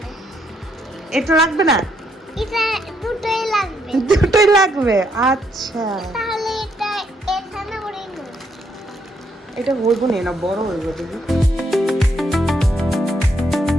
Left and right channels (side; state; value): both; normal; correlation 0.74